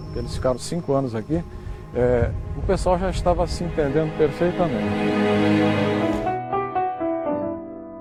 eles ficaram 5 anos aqui, o pessoal já estava se entendendo perfeitamente.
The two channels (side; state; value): both; identical; correlation 1.00